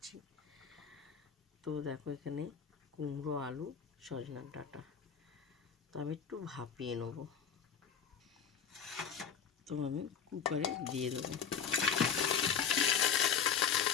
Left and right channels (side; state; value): right; quieter; 7.4 dB